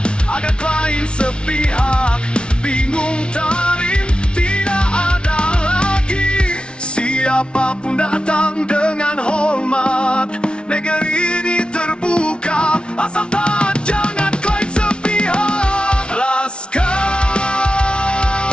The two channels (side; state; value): right; late; 0.057 ms